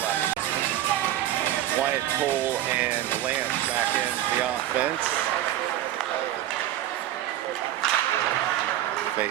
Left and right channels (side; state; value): left; quieter; 12.9 dB